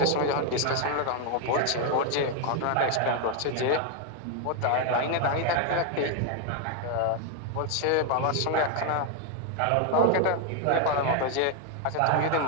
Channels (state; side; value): different; both; correlation 0.01